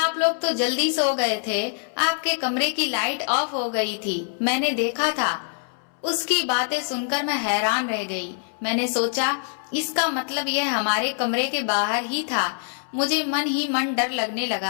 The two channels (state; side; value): silent; right; 62 dB below the other